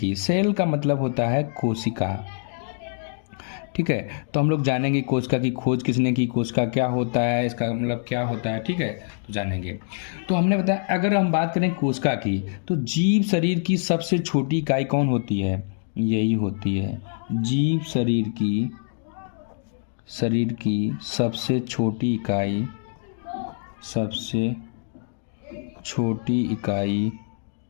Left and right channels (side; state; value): right; silent; digital silence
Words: सेल का मतलब होता है कोशिका। ठीक है, तो हम लोग जानेंगे कोशिका की खोज किसने की, कोशिका क्या होता है, इसका मतलब क्या होता है। ठीक है, तो जानेंगे। तो हमने बताया, अगर हम बात करें कोशिका की, तो जीव शरीर की सबसे छोटी इकाई कौन होती है? यही होती है जीव शरीर की सबसे छोटी इकाई